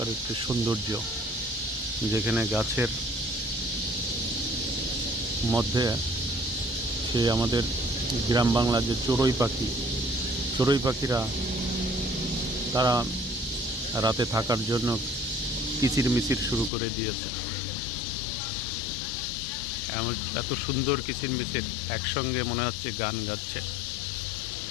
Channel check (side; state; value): right; drops out; at 16.7 s